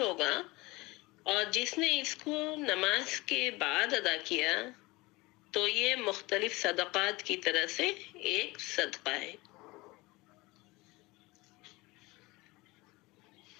ہوگا، اور جس نے اس کو نماز کے بعد ادا کیا تو یہ مختلف صدقات کی طرح سے ایک صدقہ ہے۔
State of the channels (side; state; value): right; quieter; 22.3 dB